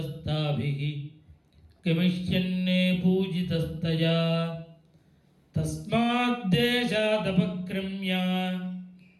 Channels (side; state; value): both; identical; correlation 1.00